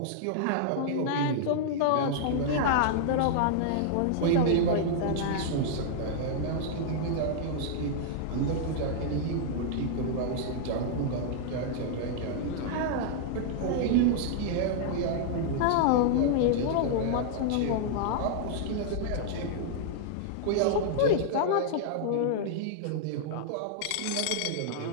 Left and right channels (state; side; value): different; both; correlation -0.01